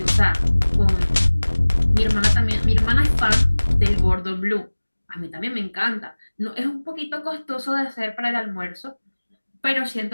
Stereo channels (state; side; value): inverted; both; correlation -1.00